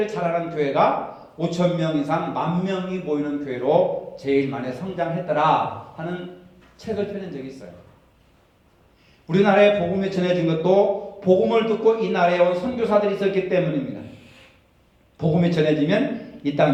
잘하는 교회가 5,000명 이상 10,000명이 모이는 교회로 제일 많이 성장했더라 하는 책을 펴낸 적이 있어요. 우리나라에 복음이 전해진 것도 복음을 듣고 이 나라에 온 선교사들이 있었기 때문입니다. 복음이 전해지면 이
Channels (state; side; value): identical; both; correlation 1.00